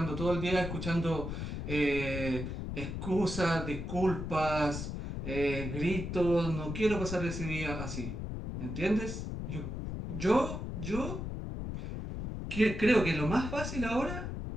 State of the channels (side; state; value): left; noise; rumble, 5 dB below the sound